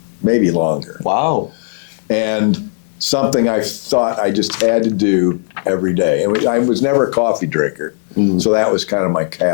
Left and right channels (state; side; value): silent; right; 69 dB below the other